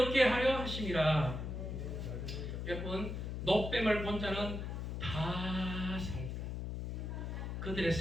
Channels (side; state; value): left; noise; hum, 4 dB below the sound